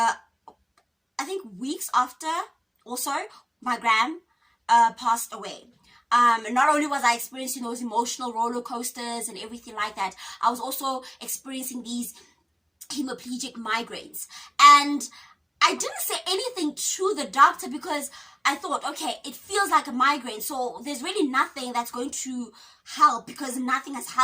weeks after, also, my gran passed away. Not only was I experiencing those emotional roller coasters and everything like that, I was also experiencing these hemiplegic migraines. And I didn't say anything to the doctor because I thought, okay, it feels like a migraine, so there's really nothing that's going to help because nothing has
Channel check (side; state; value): both; identical; correlation 1.00